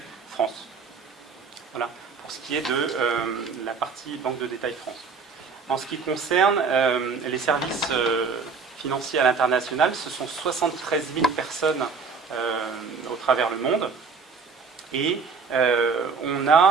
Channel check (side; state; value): left; quieter; 5.1 dB